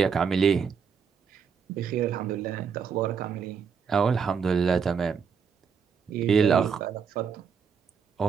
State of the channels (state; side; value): quieter; left; 6.4 dB